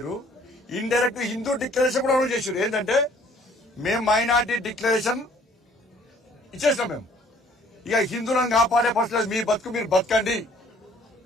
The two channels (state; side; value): normal; both; correlation 0.58